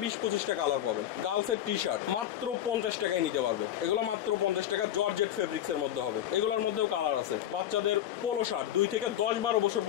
20-25টা কালার পাবেন। গার্লসের টি শার্ট মাত্র 50 টাকায় নিতে পারবে। এগুলো মাত্র 50 টাকা, জর্জেট ফেব্রিক্স এর মধ্যে হবে। এগুলোর মধ্যেও কালার আছে। বাচ্চাদের পোলো শার্ট 2 থেকে 10-12 বছর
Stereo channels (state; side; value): quieter; right; 11.4 dB